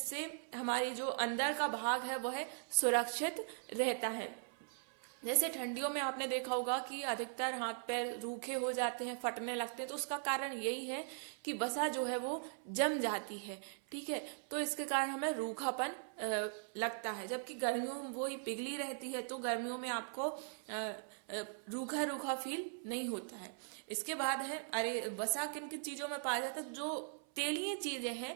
हमारी जो अंदर का भाग है वह सुरक्षित रहता है। जैसे ठंडियों में आपने देखा होगा कि अधिकतर हाथ पैर रूखे हो जाते हैं, फटने लगते हैं, तो उसका कारण यही है कि बसा जो है वो जम जाती है, ठीक है। तो इसके कारण हमें रूखापन लगता है, जबकि गर्मियों में वो ही पिघली रहती है, तो गर्मियों में आपको रूखा रूखा फील नहीं होता है। इसके बाद है बसा किन किन चीजों में पाया जाता है, जो तेलीय चीजें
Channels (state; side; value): silent; left; 51 dB below the other